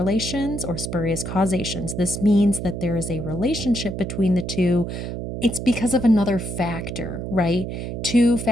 or spurious causations. This means that there is a relationship between the two. It's because of another factor, right? Two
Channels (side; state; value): right; noise; hum, 6 dB below the sound